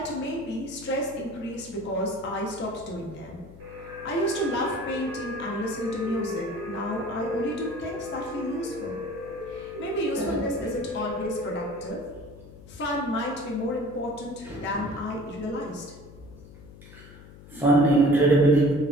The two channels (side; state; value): left; noise; hum, 18 dB below the sound